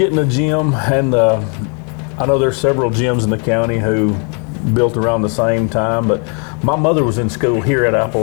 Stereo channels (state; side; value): quieter; right; 38.1 dB